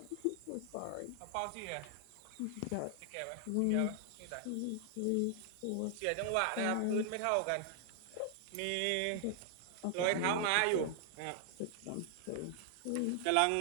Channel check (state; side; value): different; both; correlation 0.00